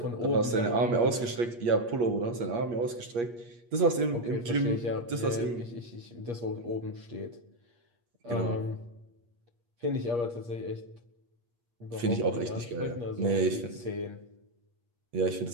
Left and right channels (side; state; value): left; late; 8.5 ms